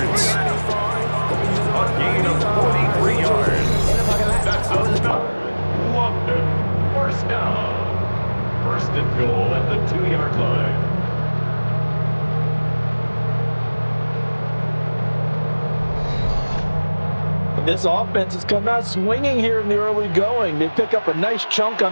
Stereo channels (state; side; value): inverted; both; correlation -1.00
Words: A gain of 43 yards. That's enough. London. First down. First and goal at the 2-yard line. This offense has come out swinging here in the early going. They pick up a nice chunk